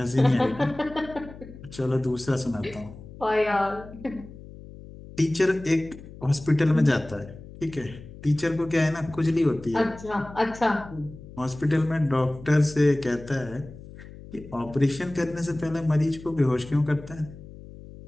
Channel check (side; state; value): left; noise; hum, 16 dB below the sound